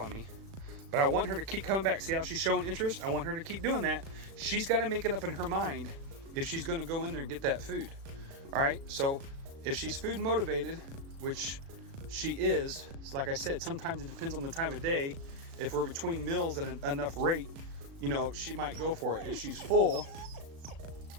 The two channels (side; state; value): left; late; 36 ms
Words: me, but I want her to keep coming back. See how she's showing interest? I want her to keep doing that. She's gotta make it up in her mind if she's gonna go in there and get that food. All right, so if she's food motivated, which she is, like I said, sometimes it depends on the time of day. If we're between meals at enough rate, you know, she might go for it. If she's full,